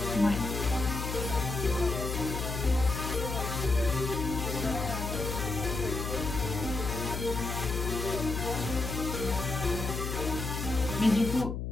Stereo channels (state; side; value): noise; left; hum, 4 dB below the sound